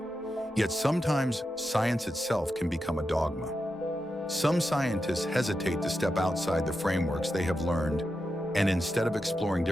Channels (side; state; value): both; normal; correlation 0.88